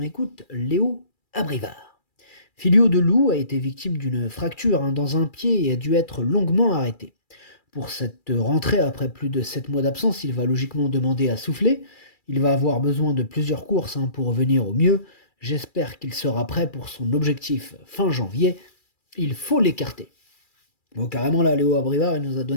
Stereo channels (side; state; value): right; late; 2.3 ms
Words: Léo Abrivard. Filio de Loup a été victime d'une fracture dans un pied et a dû être longuement arrêté. Pour cette rentrée, après plus de 7 mois d'absence, il va logiquement demander à souffler. Il va avoir besoin de plusieurs courses pour revenir au mieux. J'espère qu'il sera prêt pour son objectif fin janvier. Il faut l'écarter. Bon, carrément là, Léo Abrivard, il nous a